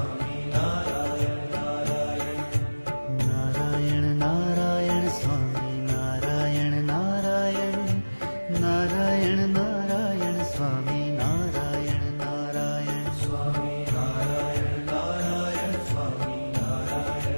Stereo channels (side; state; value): both; inverted; correlation -1.00